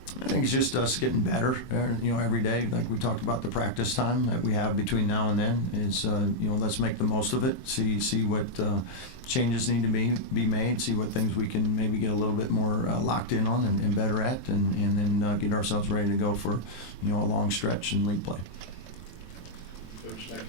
I think it's just us getting better, every day. Like we talked about the practice time that we have between now and then is, let's make the most of it. See what changes need to be made. See what things we can maybe get a little bit more locked in on and better at, and then get ourselves ready to go for, a long stretch in league play. Coach, thank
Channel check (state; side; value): late; right; 23 ms